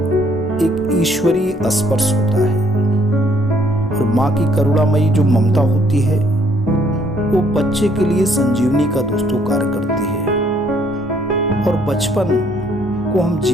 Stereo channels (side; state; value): both; normal; correlation 0.66